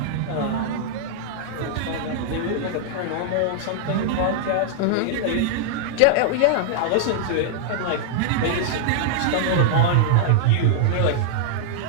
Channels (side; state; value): both; different; correlation -0.01